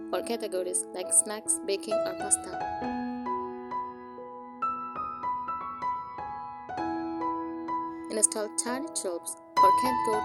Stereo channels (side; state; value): both; identical; correlation 1.00